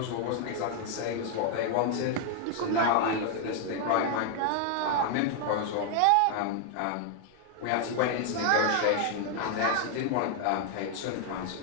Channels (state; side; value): different; both; correlation 0.00